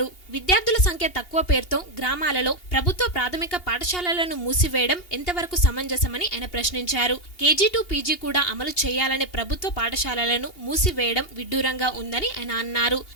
విద్యార్థుల సంఖ్య తక్కువ పేరుతో గ్రామాలలో ప్రభుత్వ ప్రాథమిక పాఠశాలలను మూసివేయడం ఎంతవరకు సమంజసం అని ఆయన ప్రశ్నించారు. కేజీ టు పీజీ కూడా అమలు చేయాలనే ప్రభుత్వ పాఠశాలలను మూసివేయడం విడ్డూరంగా ఉందని ఆయన అన్నారు.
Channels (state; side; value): late; right; 2.8 ms